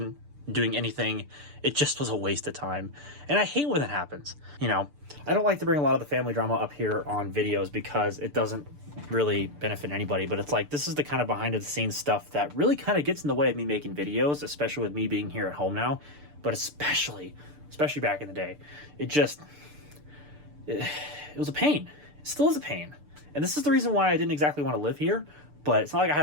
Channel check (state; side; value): late; left; 6.8 ms